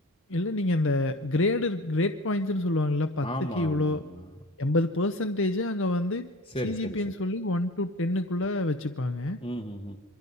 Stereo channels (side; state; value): both; normal; correlation 0.39